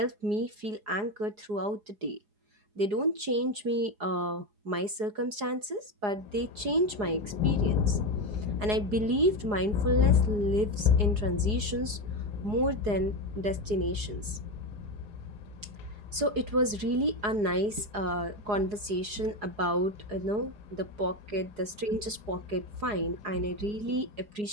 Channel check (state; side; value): late; left; 4.8 ms